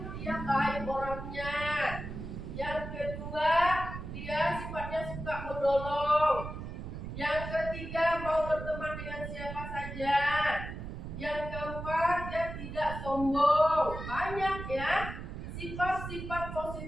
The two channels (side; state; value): right; noise; rumble, 8 dB below the sound